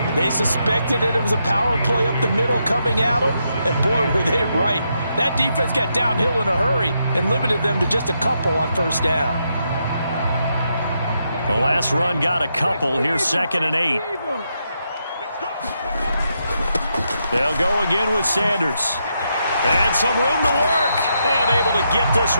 They suspected that it was a power play up the middle coming at them, and boy, were they right. That defense got downhill in a hurry and limited them to just a couple on first down. The last run got a couple. Here's 2nd and 8. They'll go again with Sanders. And some room to work. And able to get this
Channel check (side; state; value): both; inverted; correlation -0.81